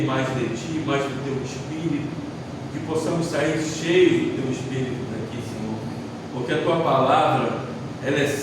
mais de Ti, mais do Teu Espírito, que possamos sair cheios do Teu Espírito daqui, Senhor, porque a Tua palavra, ela é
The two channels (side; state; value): both; identical; correlation 1.00